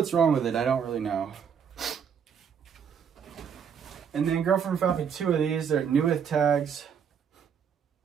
wrong with it. I don't really know. And then girlfriend found me two of these. They're new with tags.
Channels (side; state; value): left; quieter; 7.4 dB